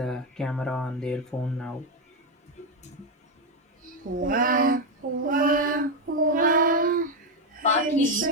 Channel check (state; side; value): normal; both; correlation 0.07